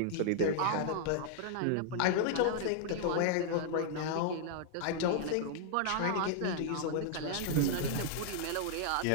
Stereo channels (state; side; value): different; both; correlation 0.00